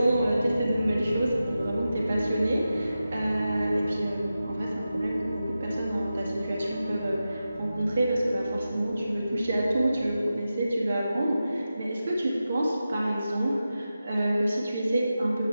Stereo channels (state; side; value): inverted; both; correlation -0.92